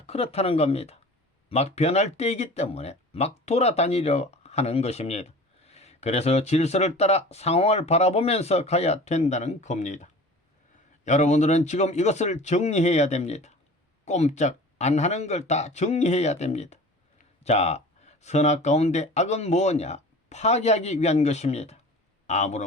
그렇다는 겁니다. 막 변할 때이기 때문에 막 돌아다니려 하는 것입니다. 그래서 질서를 따라 상황을 바라보면서 가야 된다는 겁니다. 여러분들은 지금 이것을 정리해야 됩니다. 꼼짝 안 하는 걸 다 정리해야 됩니다. 자, 선악 가운데 악은 뭐냐? 파괴하기 위한 것입니다.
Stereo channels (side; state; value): both; normal; correlation 0.40